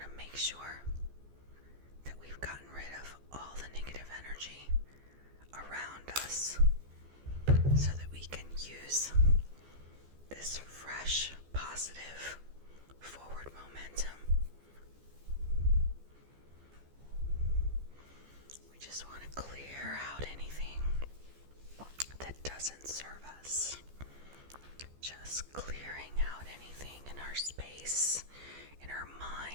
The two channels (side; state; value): left; late; 14 ms